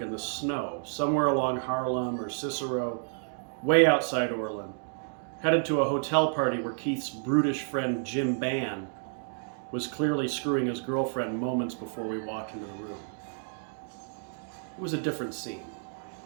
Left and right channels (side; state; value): left; silent; 58 dB below the other